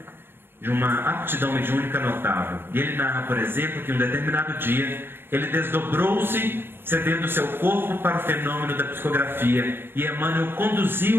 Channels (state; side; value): late; left; 0.10 ms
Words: de uma aptidão mediúnica notável. E ele narra, por exemplo, que em um determinado dia ele desdobrou-se, cedendo seu corpo para o fenômeno da psicografia, e Emmanuel